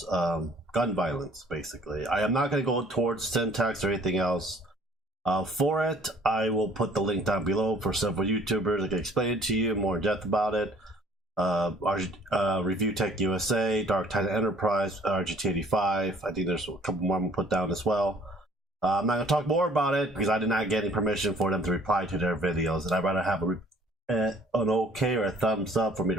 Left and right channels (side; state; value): both; normal; correlation 0.55